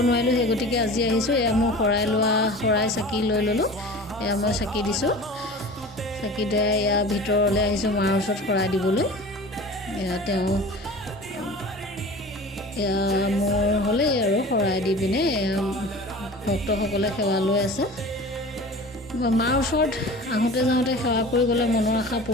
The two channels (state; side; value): normal; both; correlation 0.38